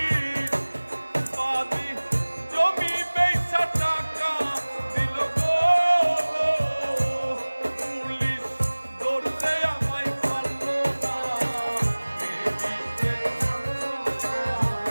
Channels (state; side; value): inverted; both; correlation -1.00